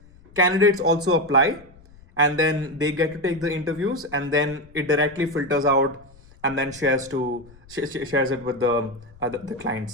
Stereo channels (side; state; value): left; noise; rumble, 24 dB below the sound